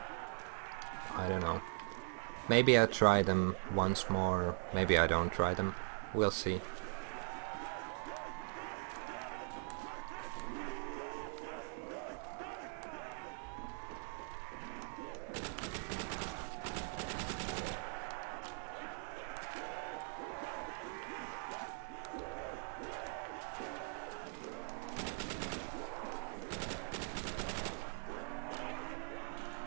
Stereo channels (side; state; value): left; silent; 50 dB below the other